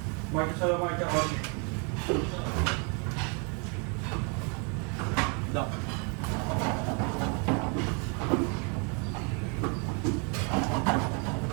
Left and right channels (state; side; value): quieter; left; 35.6 dB